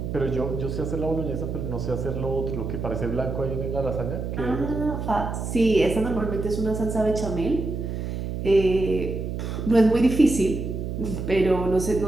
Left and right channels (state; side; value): noise; right; hum, 4 dB below the sound